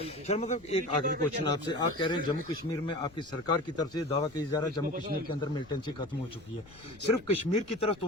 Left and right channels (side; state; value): left; noise; rumble, 24 dB below the sound